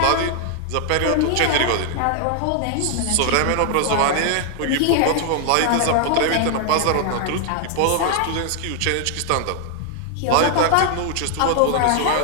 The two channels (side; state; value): both; different; correlation 0.00